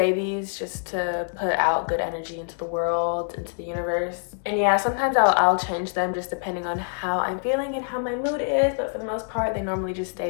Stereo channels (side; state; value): right; silent; 62 dB below the other